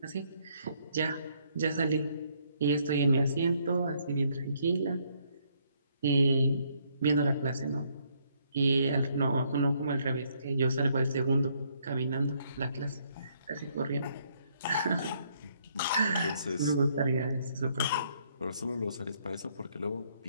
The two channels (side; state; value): both; inverted; correlation -0.70